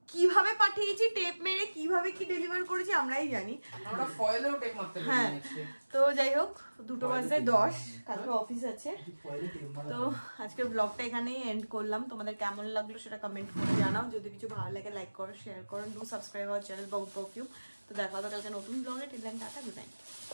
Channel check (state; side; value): inverted; both; correlation -1.00